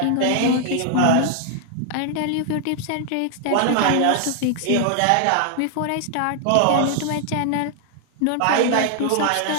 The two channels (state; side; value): different; both; correlation 0.00